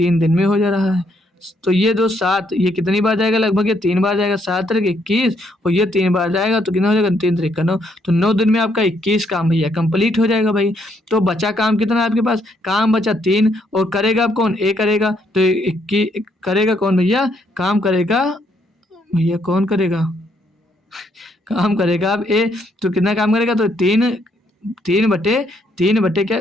दिन में हो जा रहा है। तो ये दो 7, ये कितनी बार जाएगा, लगभग ये 3 बार जाएगा, 7 तरीके 21, और ये 3 बार जाएगा तो कितना हो जाएगा, 3 तरीके 9। तो 9 दिन में आपका 21 काम भैया कंप्लीट हो जाएगा भाई। तो बचा काम कितना है आपके पास, काम बचा 3, और करेगा अब कौन, ए करेगा। तो 21 करेगा कौन भैया, काम करेगा भैया, कौन करेगा काम करेगा अब ए। तो कितना काम करेगा, तो 3 बटे क्या,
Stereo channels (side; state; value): both; normal; correlation 0.72